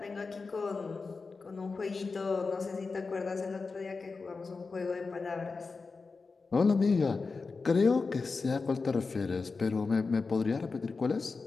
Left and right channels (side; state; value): right; quieter; 4.3 dB